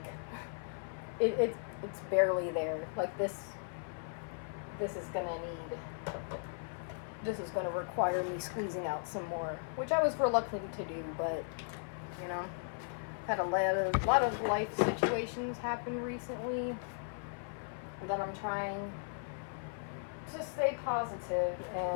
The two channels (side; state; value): right; silent; 53 dB below the other